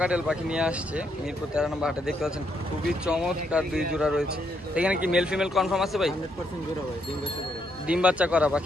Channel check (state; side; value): normal; both; correlation 0.76